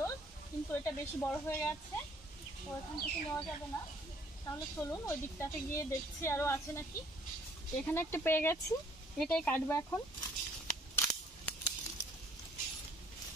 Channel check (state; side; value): normal; both; correlation 0.60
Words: কিন্তু এটা বেশি বড় হয়ে গেছে, তো এখান থেকে নেওয়া যাবে না। তাহলে চলুন ওই দিকটাতে গিয়ে দেখছি আরও আছে নাকি। এখানে একটা পেয়ে গেছি, এটাই কাটবো এখন।